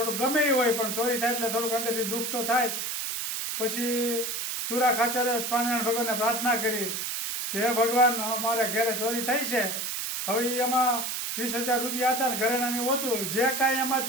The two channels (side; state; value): right; noise; hiss, 3 dB below the sound